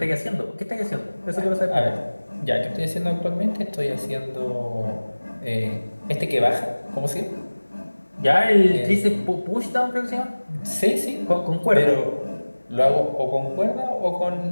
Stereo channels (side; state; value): both; inverted; correlation -1.00